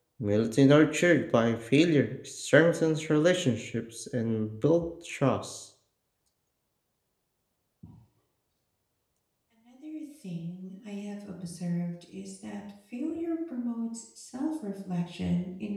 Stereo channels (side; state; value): both; identical; correlation 1.00